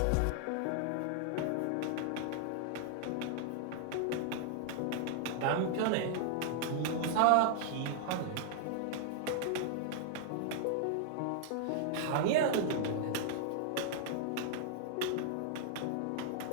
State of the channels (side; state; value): both; different; correlation -0.01